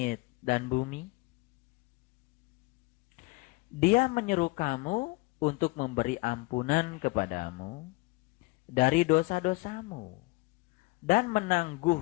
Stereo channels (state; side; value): quieter; right; 24.3 dB